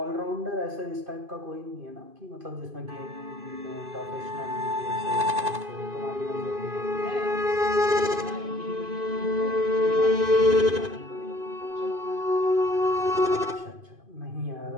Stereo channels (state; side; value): late; left; 2.5 ms